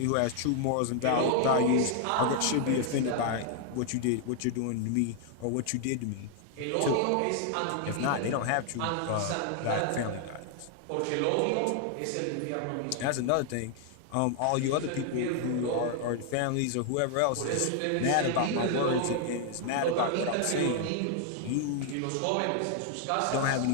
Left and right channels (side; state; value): both; different; correlation 0.00